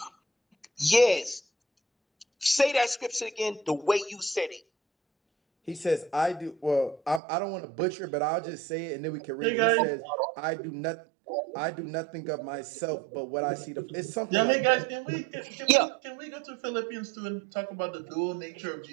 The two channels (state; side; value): drops out; left; at 7.2 s